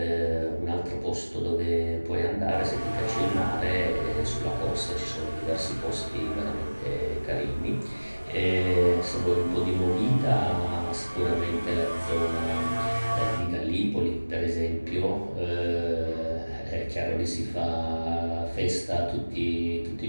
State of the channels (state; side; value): inverted; both; correlation -1.00